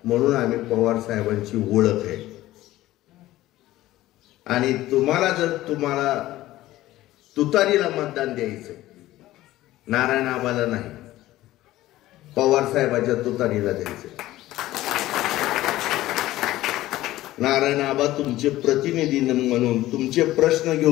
म्हणून आम्ही पवार साहेबांची ओळख आहे. आणि तुम्हाला तुतारीला मतदान द्यायचं, नारायण आबाला नाही, पवार साहेबांच्या तुतारीला द्यायचं. नारायण आबा तुमचे प्रतिनिधी म्हणून तुमचे प्रश्न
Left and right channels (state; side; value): quieter; right; 15.8 dB